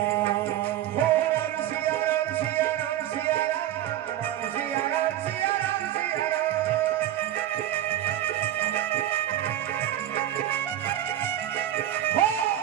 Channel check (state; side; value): quieter; left; 12.3 dB